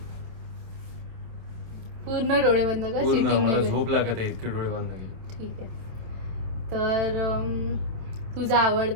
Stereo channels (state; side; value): late; left; 27 ms